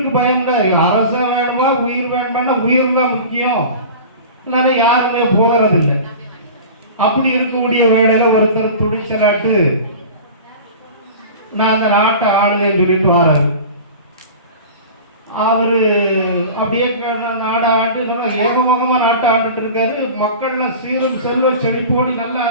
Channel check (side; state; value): both; inverted; correlation -0.36